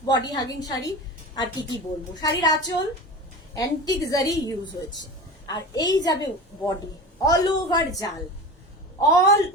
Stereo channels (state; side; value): normal; both; correlation 0.31